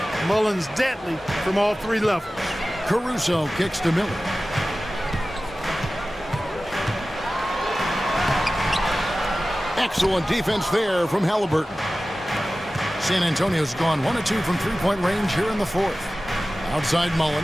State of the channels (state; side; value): normal; both; correlation 0.96